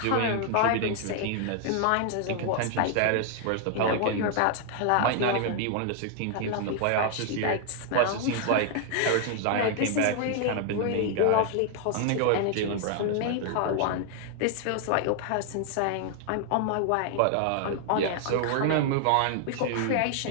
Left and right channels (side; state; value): both; different; correlation 0.00